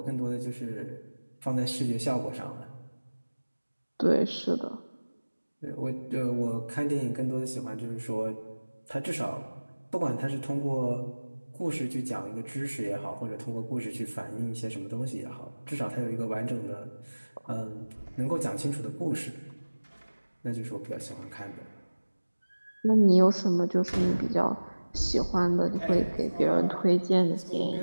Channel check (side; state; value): both; inverted; correlation -1.00